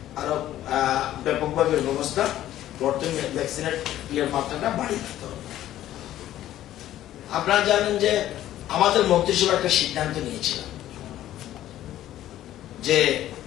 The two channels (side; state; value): right; quieter; 13.1 dB